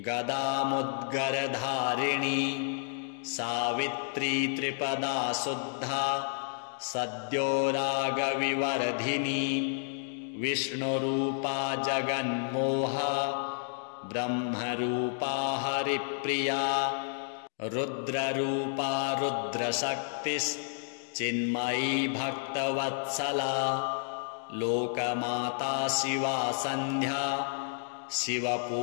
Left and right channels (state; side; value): silent; right; digital silence